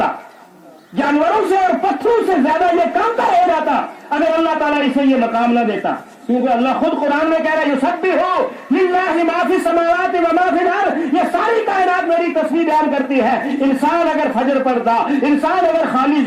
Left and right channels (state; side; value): identical; both; correlation 1.00